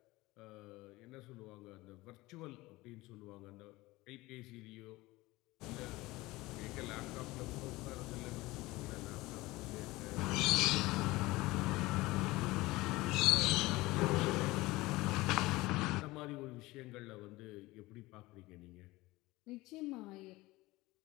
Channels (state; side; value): quieter; right; 20.1 dB